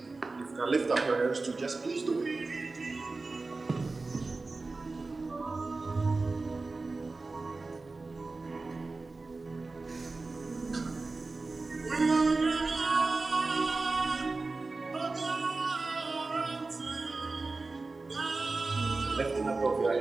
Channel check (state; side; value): quieter; left; 3.6 dB